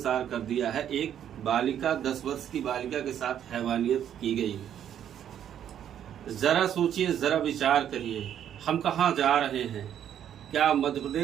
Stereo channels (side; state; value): left; quieter; 9.9 dB